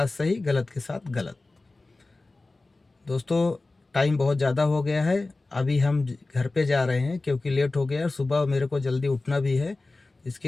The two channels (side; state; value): right; quieter; 3.2 dB